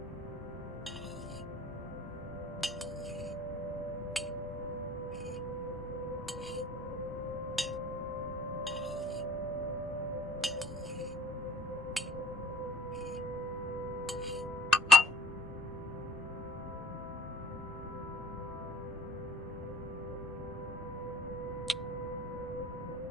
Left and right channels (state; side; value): normal; both; correlation 0.51